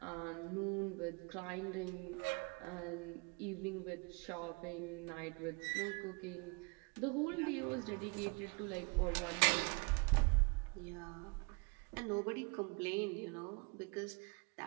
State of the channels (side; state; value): left; quieter; 32.0 dB